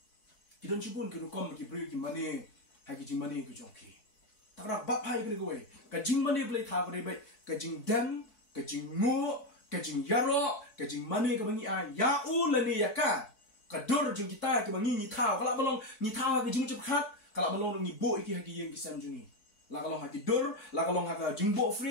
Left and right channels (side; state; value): right; late; 4.6 ms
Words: Kita cipun ke rukom ki beri ki mani hagi jing mani ki jongi. Tak bap hai ke gue, kajing mani boleh tahu ke baik, kajing dem, kajing mu, kajing yaro, kajing mani ke bangi ya ulani ya ka, kador jeng kita ke bangi ni tahu, kalau belum ni tahu ke jeng cepat, kalau belum ni bo iki haki yang kisam jungi, lah kalau haki dor, lah kalau haki jengbo